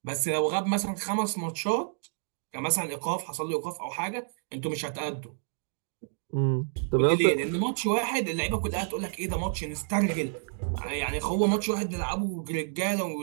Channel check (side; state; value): left; silent; digital silence